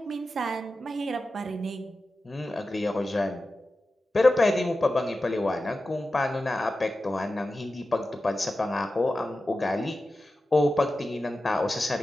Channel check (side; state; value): both; normal; correlation 0.93